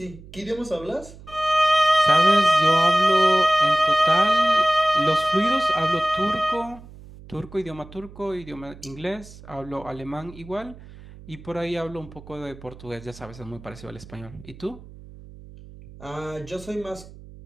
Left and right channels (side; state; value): right; noise; hum, 19 dB below the sound